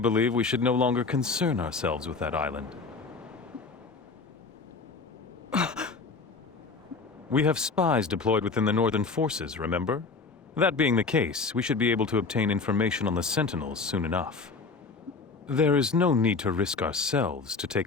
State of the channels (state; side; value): quieter; right; 4.3 dB